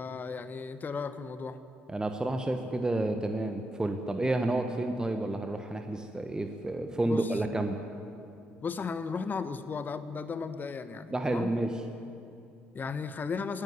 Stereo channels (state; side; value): normal; both; correlation 0.84